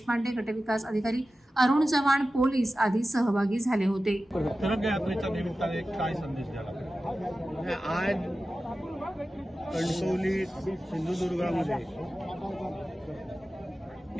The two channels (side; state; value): both; normal; correlation 0.94